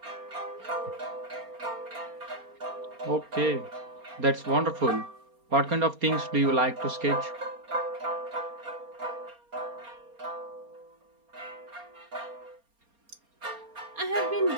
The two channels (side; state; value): left; late; 4.3 ms